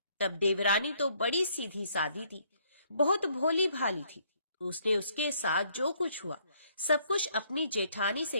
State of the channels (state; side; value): inverted; both; correlation -0.67